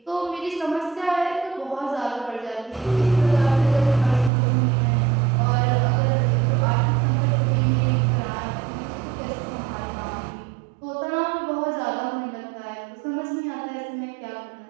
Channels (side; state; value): left; drops out; at 4.3 s